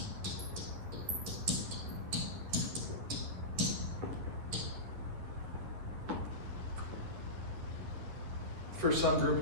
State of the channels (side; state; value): left; late; 10 ms